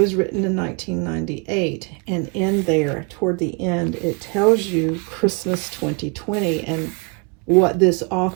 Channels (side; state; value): left; quieter; 32.5 dB